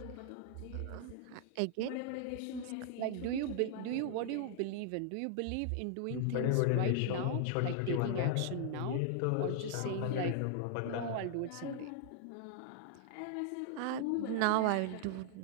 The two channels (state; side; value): different; both; correlation -0.01